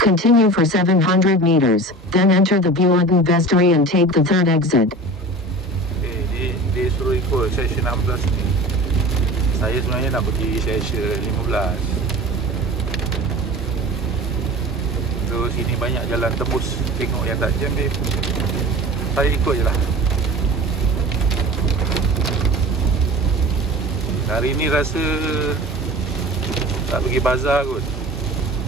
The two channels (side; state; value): both; normal; correlation 0.37